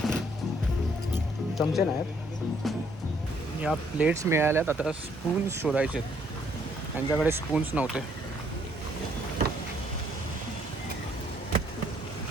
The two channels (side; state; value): both; normal; correlation 0.67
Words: चमचे नाहीत. या प्लेट्स मिळाल्यात. आता स्पून्स शोधायचे. त्यांच्याकडे स्पून्स नव्हते.